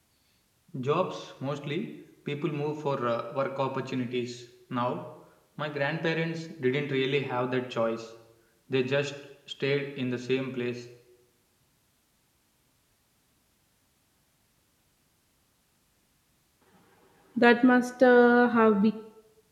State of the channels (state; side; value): identical; both; correlation 1.00